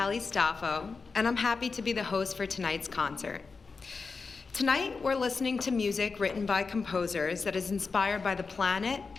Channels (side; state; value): right; quieter; 4.6 dB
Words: Staffo, and I'm happy to be the host for tonight's concert. Tonight, we're listening to music written by composers that is inspired by the planet,